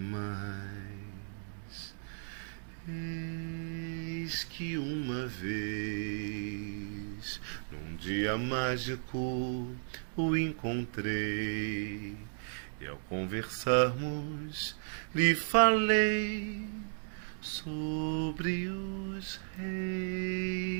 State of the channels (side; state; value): left; silent; digital silence